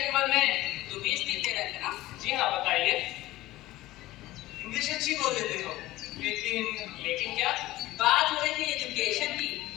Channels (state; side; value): quieter; right; 17.1 dB